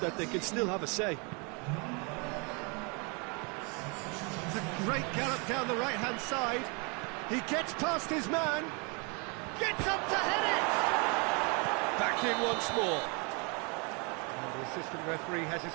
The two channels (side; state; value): left; quieter; 32.5 dB